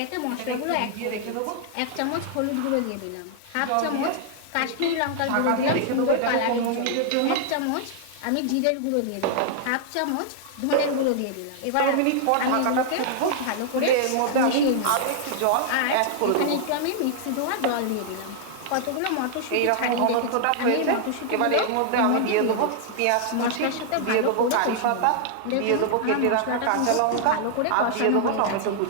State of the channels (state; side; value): different; both; correlation -0.01